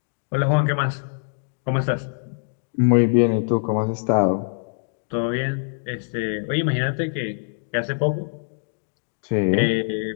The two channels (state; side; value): silent; right; digital silence